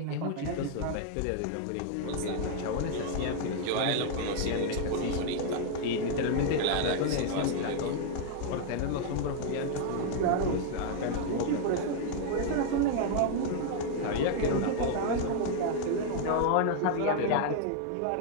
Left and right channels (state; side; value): different; both; correlation 0.00